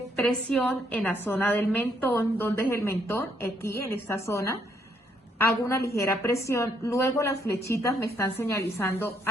presión en la zona del mentón. ¿Dónde es el mentón? Aquí, en esta zona. Hago una ligera presión, luego las flechitas me están señalizando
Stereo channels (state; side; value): normal; both; correlation 0.72